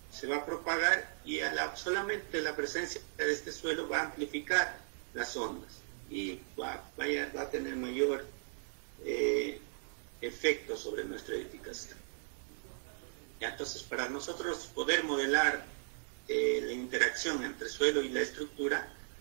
se va a propagar y solamente la presencia de este suelo va a amplificar las ondas y va a tener mayor efecto sobre nuestra edificación. Ya, entonces, para nosotros poder modelar la interacción entre suelo y la estructura,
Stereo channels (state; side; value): silent; left; 53 dB below the other